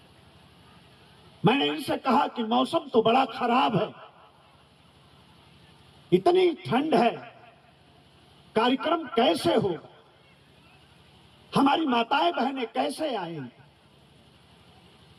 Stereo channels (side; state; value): both; identical; correlation 1.00